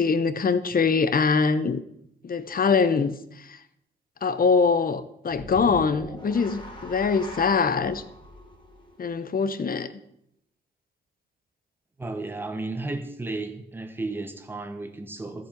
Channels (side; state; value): right; quieter; 4.3 dB